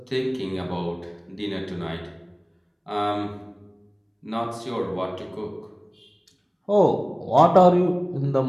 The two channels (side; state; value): both; identical; correlation 1.00